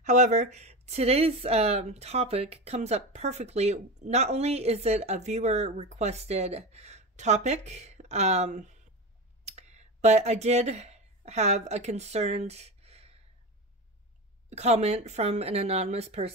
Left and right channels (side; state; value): both; normal; correlation 0.24